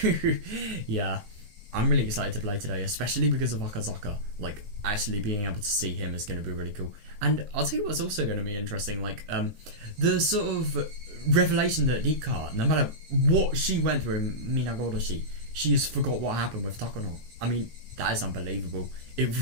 Yeah, I'm really excited to play today, especially because of Akazaka. Like, actually being able to see him is going to be really cool. And I'll tell you what's also going to be interesting, like, the sort of revelation that Rika, no matter what she went through in Minagodoshi, she has forgot what happened with Takano. I mean, that is unbelievable.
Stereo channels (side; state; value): left; late; 19 ms